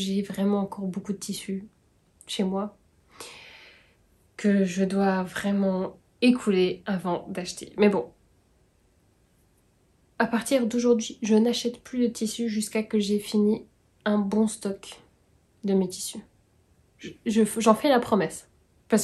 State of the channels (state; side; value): identical; both; correlation 1.00